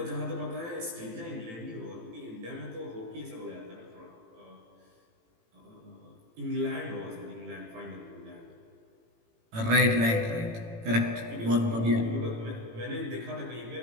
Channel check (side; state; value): left; late; 18 ms